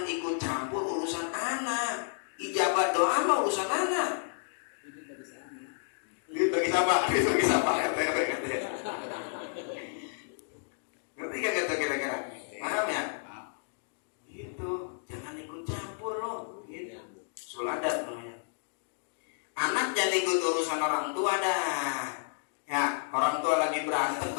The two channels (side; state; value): right; silent; digital silence